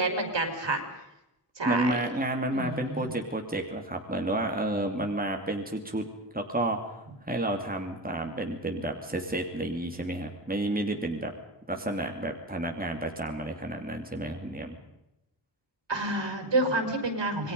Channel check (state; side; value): normal; both; correlation 0.22